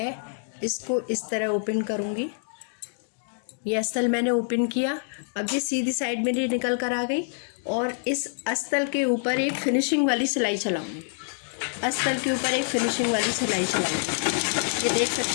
इसको इस तरह ओपन करूंगी। ये अस्तर मैंने ओपन किया। अब ये सीधी साइड मेरी निकल कर आ गई और इस अस्तर के ऊपर एक फिनिशिंग वाली सिलाई चलाऊंगी। अस्तर के ऊपर एक फिनिशिंग वाली सिलाई चलाऊंगी। ये देख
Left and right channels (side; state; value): right; silent; digital silence